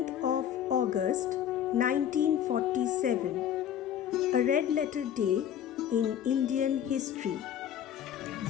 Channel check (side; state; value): right; quieter; 9.8 dB